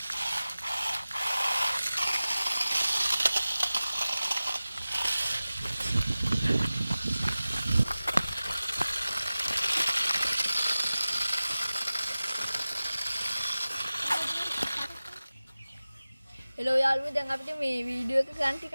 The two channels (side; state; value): both; inverted; correlation -0.97